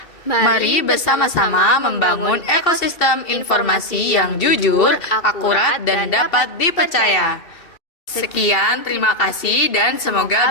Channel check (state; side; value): late; right; 2.7 ms